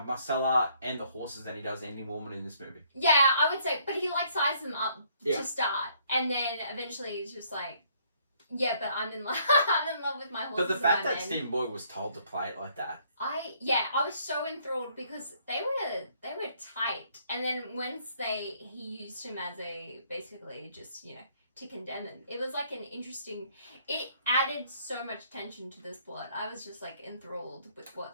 and the horses than he does any woman in this movie. Yeah, I would say, but he like sized them up to start, and then eventually he's just like, yeah, but I'm in love. I'm in love with my horses. But the fact that Stephen Boyd was told to play it like that, I was so enthralled because they were tight, and then once he used him as a basically just to condemn him. It was like an interesting. It added so much tension to this plot. I was just like enthralled with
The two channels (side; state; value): both; inverted; correlation -0.65